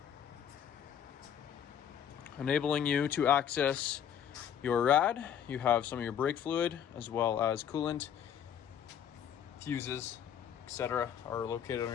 enabling you to access your rad. You have some of your brake fluid as well as coolant, fuses, etc. are located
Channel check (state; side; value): quieter; right; 9.1 dB